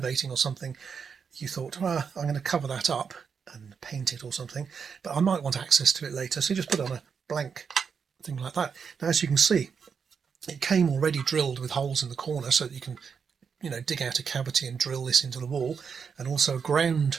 or something, you thought, I'm going to cover that up and paint it or something, but I might want access to it later, so you just put on a blank thing like that. Now, as you can see, it came already drilled with holes in the corner so that you can, you know, dig out a cavity and drill this into the wall, and also a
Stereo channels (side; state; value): left; quieter; 6.3 dB